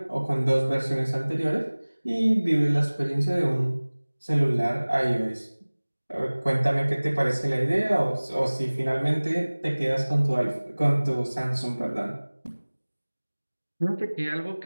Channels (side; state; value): both; inverted; correlation -1.00